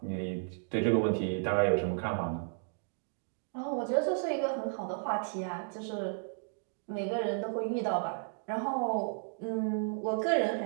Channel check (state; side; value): silent; left; digital silence